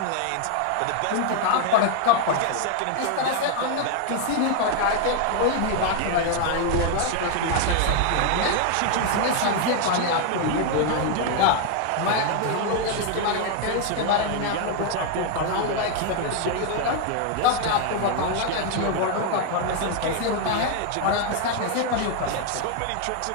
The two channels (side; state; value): both; different; correlation 0.00